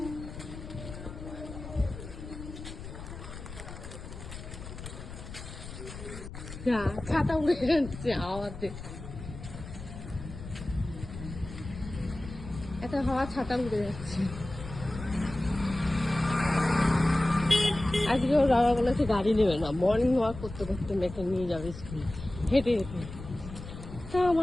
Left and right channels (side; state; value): left; noise; rumble, 11 dB below the sound